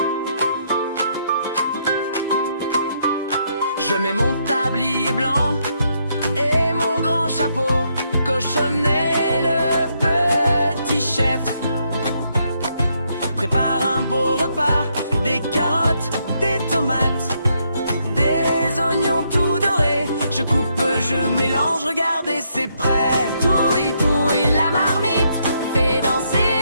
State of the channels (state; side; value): inverted; both; correlation -0.75